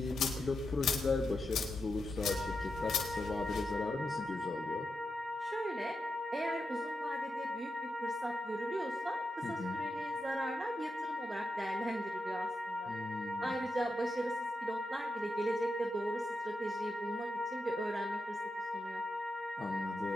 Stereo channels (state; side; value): normal; both; correlation 0.87